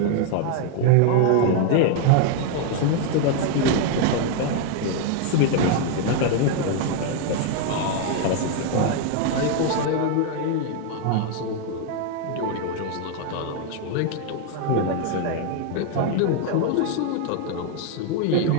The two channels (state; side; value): different; both; correlation 0.01